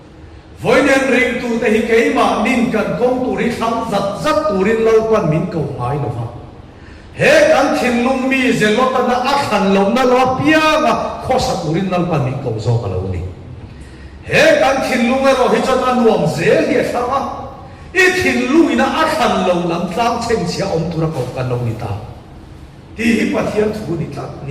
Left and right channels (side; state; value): both; identical; correlation 1.00